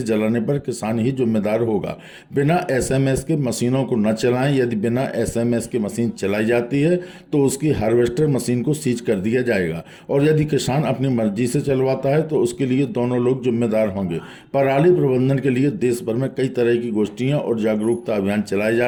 जलाने पर किसान ही जिम्मेदार होगा। बिना एसएमएस के मशीनों को न चलाएं। यदि बिना एसएमएस के मशीन चलाई जाती है तो उसकी हार्वेस्टर मशीन को सीज कर दिया जाएगा, और यदि किसान अपनी मर्जी से चलवाता है तो उसके लिए दोनों लोग जिम्मेदार होंगे। पराली प्रबंधन के लिए देश भर में कई तरह की गोष्ठियां और जागरूकता अभियान चलाए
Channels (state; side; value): identical; both; correlation 1.00